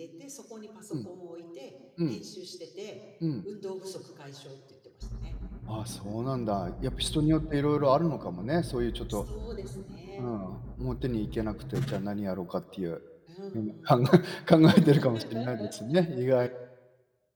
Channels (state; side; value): identical; both; correlation 1.00